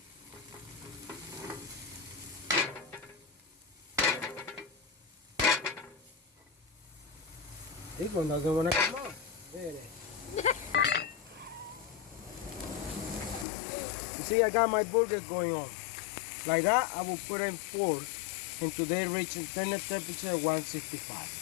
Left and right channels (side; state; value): right; drops out; at 13.5 s